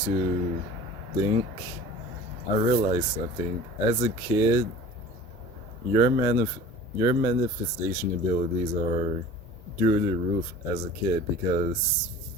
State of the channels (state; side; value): normal; both; correlation 0.42